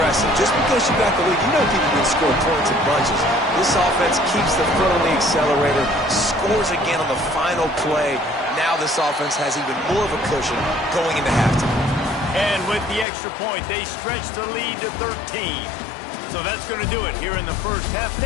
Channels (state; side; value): drops out; right; at 13.1 s